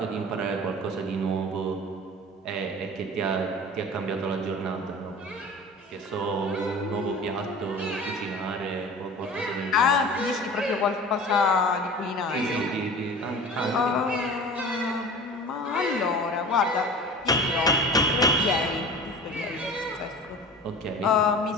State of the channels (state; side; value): normal; both; correlation 0.38